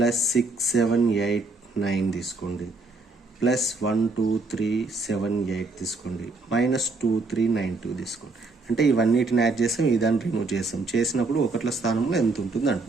7 8 9 తీసుకోండి, +1 2 3 7 8 తీసుకోండి, -2 3 9 2 తీసుకోండి. అంటే ఇవన్నిటిని యాడ్ చేసాం, ఇదాన్ని రిమూవ్ చేసినప్పుడు ఒకట్ల స్థానంలో ఎంత ఉంటుంది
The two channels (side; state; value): left; quieter; 3.5 dB